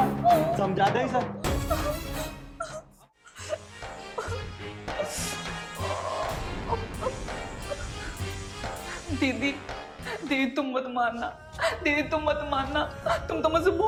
समझा दे सर। दीदी दीदी तुम मत मानना, दीदी तुम मत मानना, तुम तो मुझसे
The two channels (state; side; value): identical; both; correlation 1.00